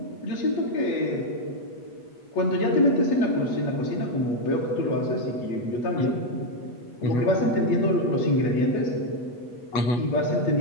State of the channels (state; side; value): late; right; 8.2 ms